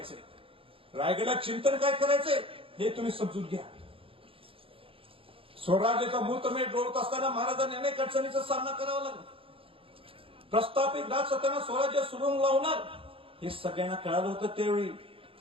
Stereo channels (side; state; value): left; late; 0.26 ms